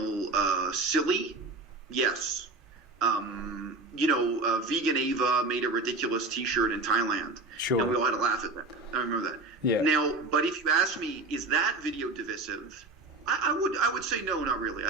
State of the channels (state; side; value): quieter; left; 3.3 dB